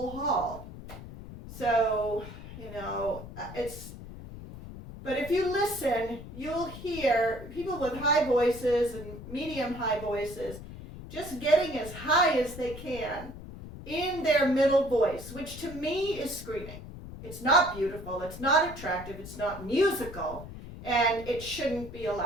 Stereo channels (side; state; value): left; noise; rumble, 13 dB below the sound